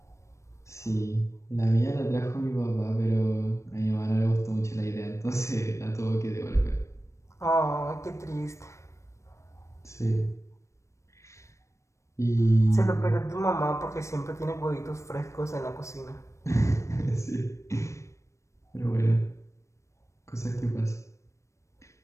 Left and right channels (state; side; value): late; right; 0.14 ms